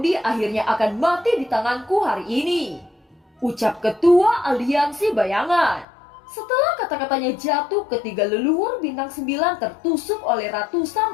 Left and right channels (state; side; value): drops out; right; at 5.9 s